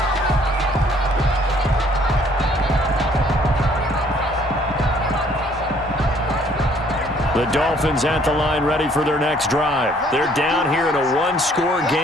The Dolphins at the line ready for their next drive. They're down here in a 1-score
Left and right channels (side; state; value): both; normal; correlation 0.61